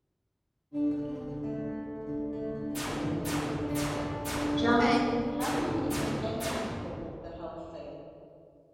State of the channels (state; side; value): identical; both; correlation 1.00